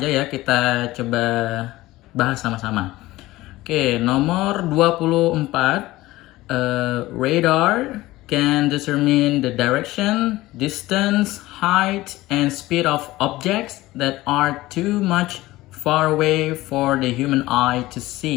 ya kita coba bahas sama-sama. Oke, nomor 24. Radar can determine the direction, distance, height, and speed of objects that are too much far away for the human eye to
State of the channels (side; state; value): right; quieter; 17.9 dB